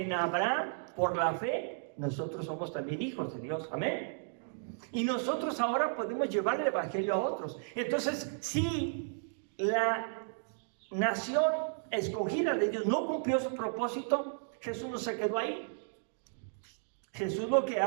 en Abraham, por la fe, nosotros somos también hijos de Dios. Amén. Y nosotros ahora podemos llevar el evangelio a otros. Entonces, si la nación escogida de Dios no cumplió su propósito, Jesús no se quedó ahí. Jesús lo que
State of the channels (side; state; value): left; silent; digital silence